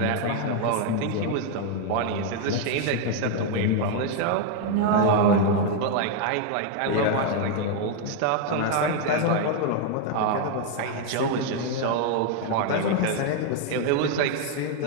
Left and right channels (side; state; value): both; different; correlation 0.01